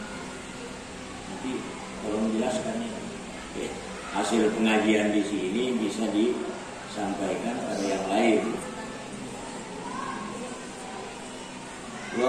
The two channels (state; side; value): identical; both; correlation 1.00